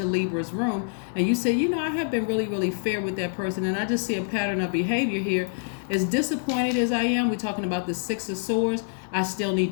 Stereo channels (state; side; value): silent; right; 61 dB below the other